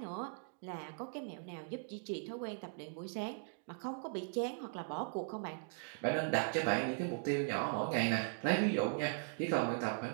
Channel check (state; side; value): silent; left; digital silence